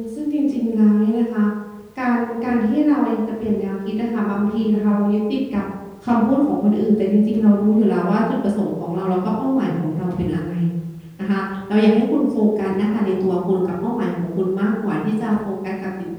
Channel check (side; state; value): both; identical; correlation 1.00